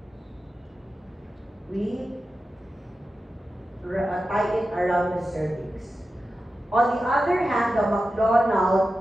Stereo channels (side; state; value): both; normal; correlation 0.92